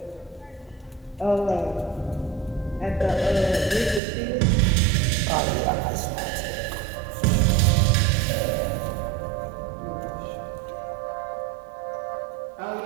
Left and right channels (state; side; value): drops out; left; at 4.0 s